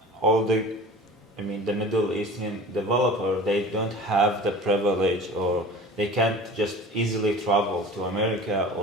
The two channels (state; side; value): normal; both; correlation 0.40